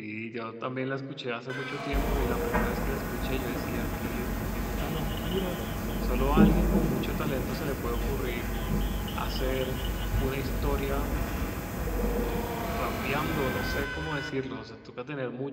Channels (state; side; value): identical; both; correlation 1.00